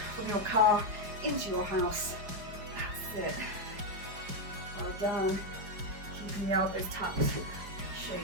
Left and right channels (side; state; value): left; late; 4.9 ms